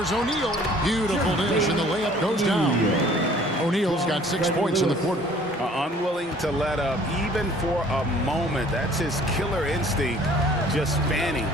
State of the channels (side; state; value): both; normal; correlation 0.54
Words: O'Neal. Beautiful dish, and the layup goes down. O'Neal's got 6 points in the quarter. Unwilling to let up even for a moment. That's his killer instinct, just fanning